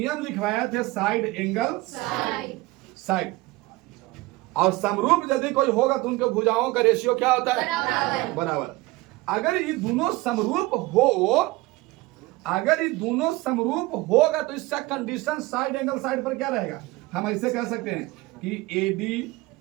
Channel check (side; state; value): left; quieter; 20.9 dB